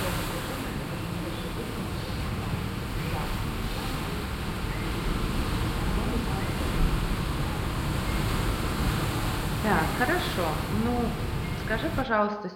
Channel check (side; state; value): both; identical; correlation 1.00